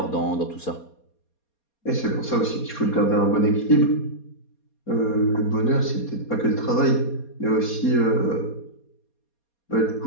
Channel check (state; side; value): late; right; 4.2 ms